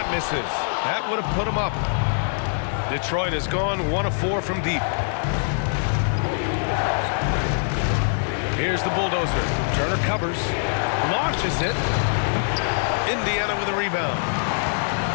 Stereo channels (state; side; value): silent; right; digital silence